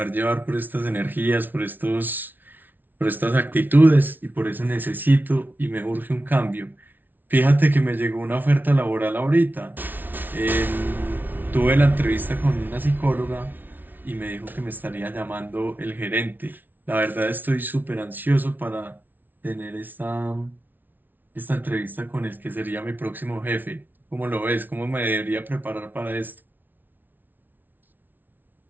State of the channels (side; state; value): left; late; 0.088 ms